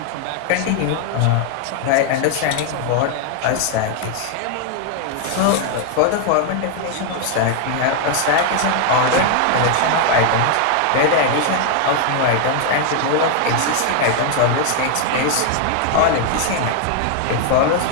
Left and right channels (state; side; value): different; both; correlation 0.00